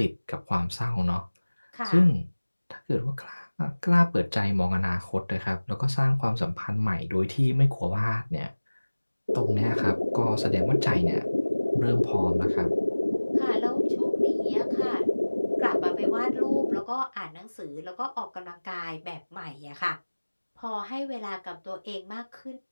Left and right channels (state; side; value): inverted; both; correlation -1.00